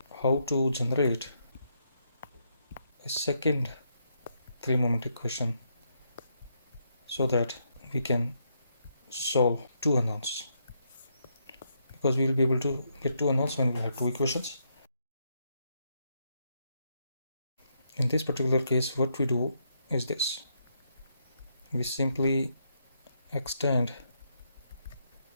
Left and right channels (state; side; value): inverted; both; correlation -0.78